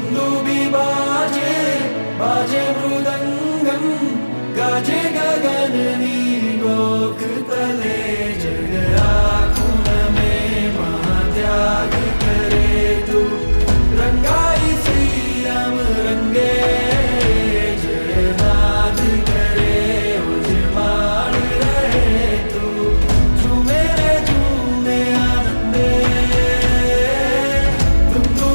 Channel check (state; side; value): inverted; both; correlation -1.00